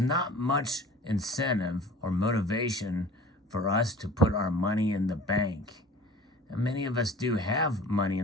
much incentive or motivation for us to put our money in the bank. And many of us do have money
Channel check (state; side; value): normal; both; correlation 0.44